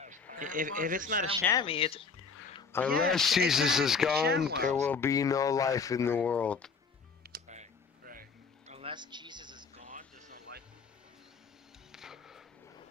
If it's not a chamois, it's... Unless Yeah, Jesus is exactly, gone, ShamWows. there will be no life in the world. Right. Unless Jesus is gone, there's no life.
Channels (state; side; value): quieter; right; 5.1 dB